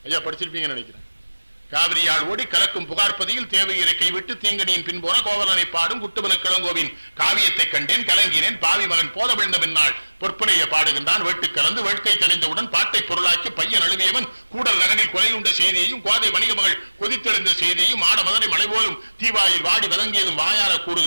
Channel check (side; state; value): both; inverted; correlation -1.00